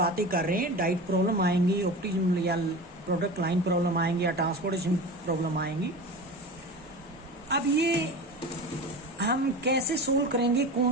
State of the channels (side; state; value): both; normal; correlation 0.31